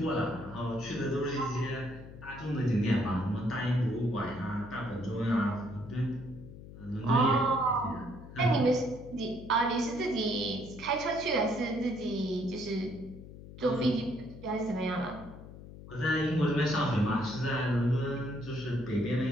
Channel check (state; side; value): noise; left; hum, 15 dB below the sound